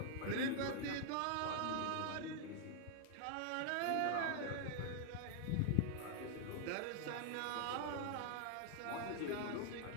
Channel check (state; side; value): different; both; correlation 0.00